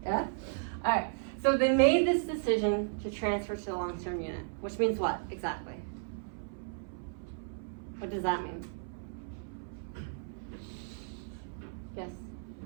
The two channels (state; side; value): silent; left; 55 dB below the other